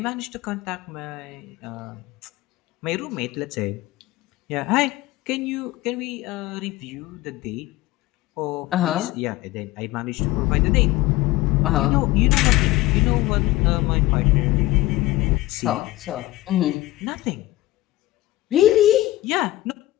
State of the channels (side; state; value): right; quieter; 17.2 dB